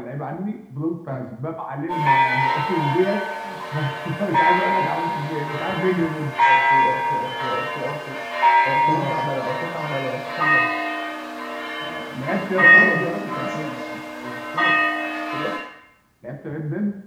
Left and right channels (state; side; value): identical; both; correlation 1.00